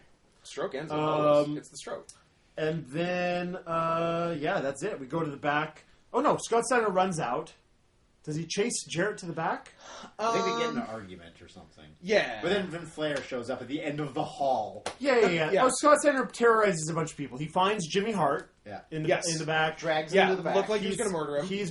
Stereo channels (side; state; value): both; identical; correlation 1.00